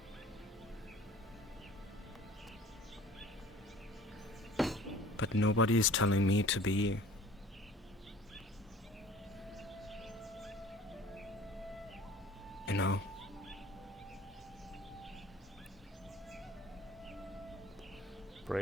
But nobody is telling me to be. You know?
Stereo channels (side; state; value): both; normal; correlation 0.47